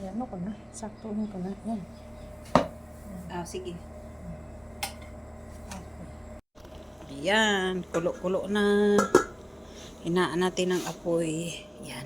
ano ko na? Sakto mo ko na. Yan. Sige. Yan. Kulo-kulo na. Hinaan natin ang apoy.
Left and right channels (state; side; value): identical; both; correlation 1.00